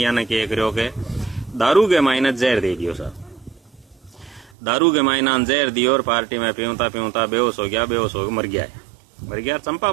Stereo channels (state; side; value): drops out; left; at 4.5 s